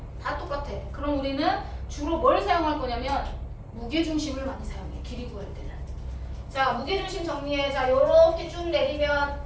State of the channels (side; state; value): both; identical; correlation 1.00